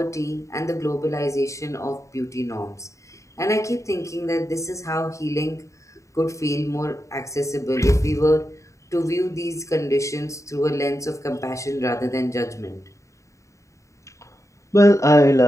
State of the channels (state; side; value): late; right; 0.15 ms